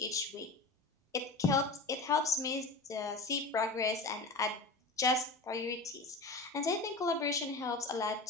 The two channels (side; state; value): right; quieter; 3.4 dB